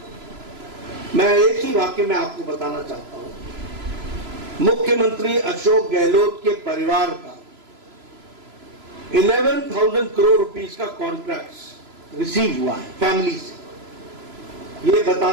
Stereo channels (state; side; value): late; left; 3.0 ms